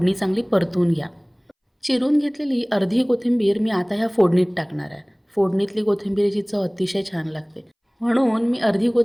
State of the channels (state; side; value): identical; both; correlation 1.00